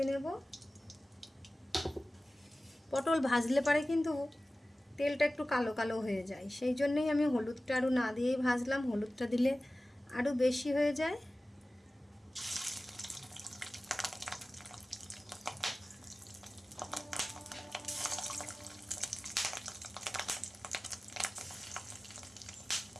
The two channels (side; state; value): both; normal; correlation 0.97